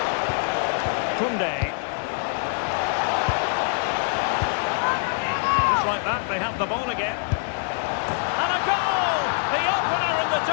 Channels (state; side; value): silent; right; digital silence